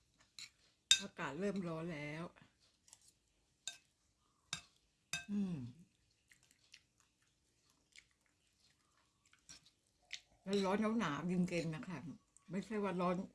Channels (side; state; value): both; identical; correlation 1.00